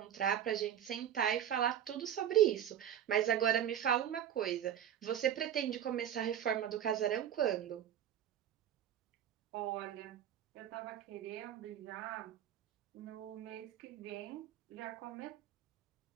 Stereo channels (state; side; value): quieter; left; 10.1 dB